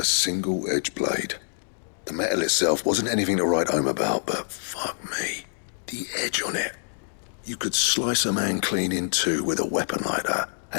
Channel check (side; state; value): right; silent; digital silence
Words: single-edged blade. The metal itself wasn't anything to write home about, but fuck me. The edge on it. You could slice a man clean in two with a weapon like that,